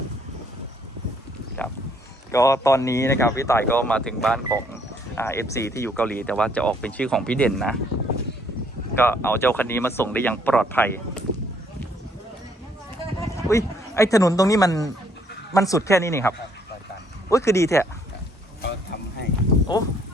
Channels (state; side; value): normal; both; correlation 0.66